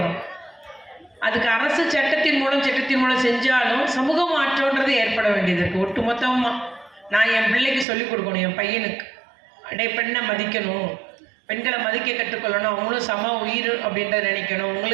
அதுக்கு அரசு சட்டத்தின் மூலம் செஞ்சாலும் சமூக மாற்றம்ன்றது ஏற்பட வேண்டியது இருக்குது. ஒட்டு மொத்தமாக நான் என் பிள்ளைக்கு சொல்லிக் கொடுக்கணும், என் பையனுக்கு பெண்ணை மதிக்கணும், பெண்களை மதிக்க கற்றுக்கொள்ளணும், அவங்களும் சம உயிர் அப்படின்றத நினைக்கணும்.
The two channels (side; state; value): left; drops out; at 7.9 s